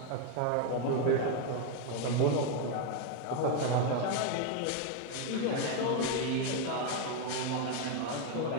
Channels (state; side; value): different; both; correlation 0.01